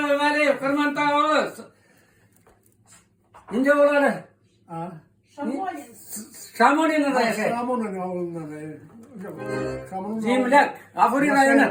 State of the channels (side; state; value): both; identical; correlation 1.00